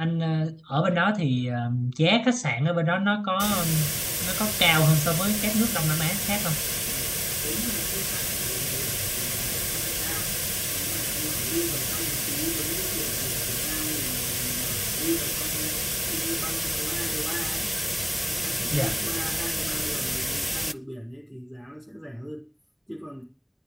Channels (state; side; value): identical; both; correlation 1.00